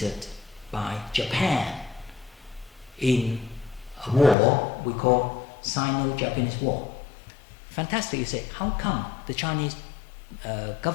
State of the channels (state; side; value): drops out; right; at 4.4 s